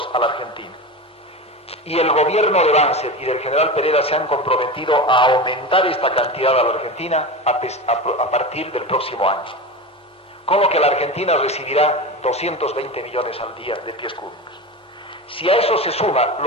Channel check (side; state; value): both; normal; correlation 0.26